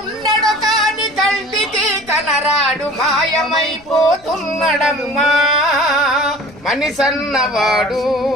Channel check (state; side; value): noise; left; rumble, 27 dB below the sound